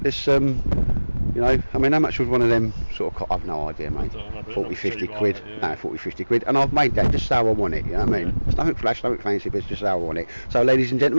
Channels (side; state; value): both; inverted; correlation -1.00